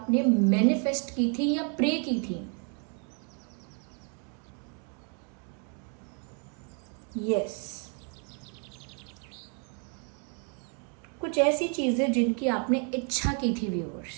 मैनिफेस्ट की थी या प्रे की थी, यस, कुछ ऐसी चीजें जिनकी आपने इच्छा की थी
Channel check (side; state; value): left; quieter; 39.1 dB